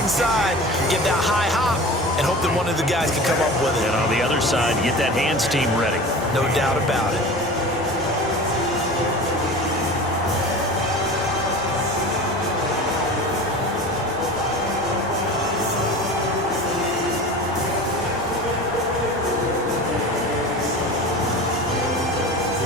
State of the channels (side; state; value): both; normal; correlation 0.35